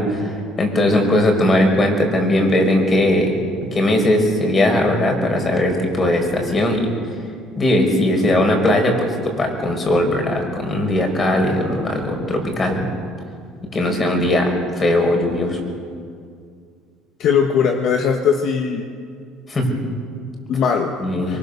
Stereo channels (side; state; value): both; normal; correlation 0.66